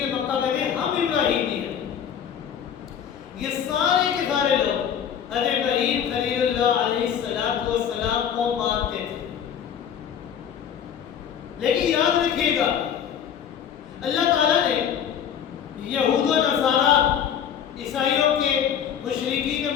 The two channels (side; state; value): right; quieter; 8.6 dB